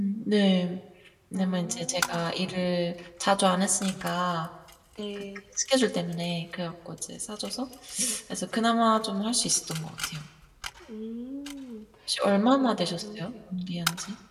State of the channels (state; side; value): identical; both; correlation 1.00